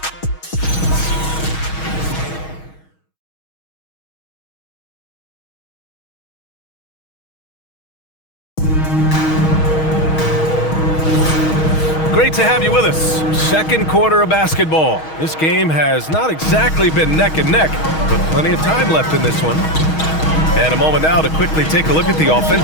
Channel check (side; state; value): right; late; 6.3 ms